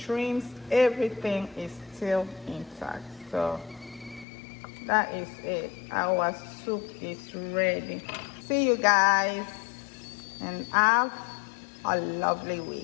everything is still intact. So that is it. Our soup is ready. See you guys and have a lovely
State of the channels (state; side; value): drops out; right; at 4.2 s